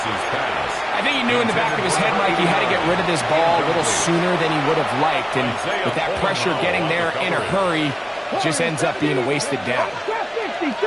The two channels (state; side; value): identical; both; correlation 1.00